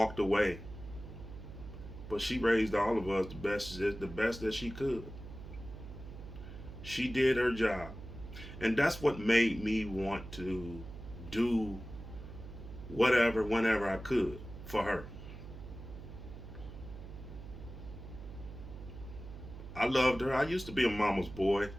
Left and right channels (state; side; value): noise; right; hum, 12 dB below the sound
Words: away. But she raised all of us the best that she could. She did her job. And that's what made me want to do whatever, whenever I could for her. I loved her. I used to be a mama's boy.